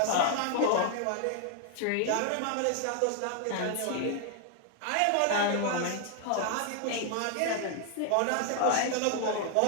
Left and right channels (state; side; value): different; both; correlation 0.00